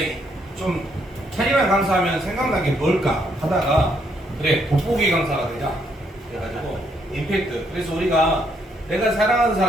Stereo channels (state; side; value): normal; both; correlation 0.73